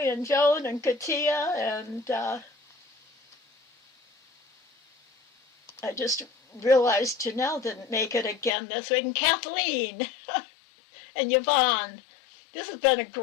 and Joan and Katia. And I just realized Janelle didn't make it again this week. And Kathleen and Yvonne. This has been a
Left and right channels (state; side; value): drops out; right; at 8.5 s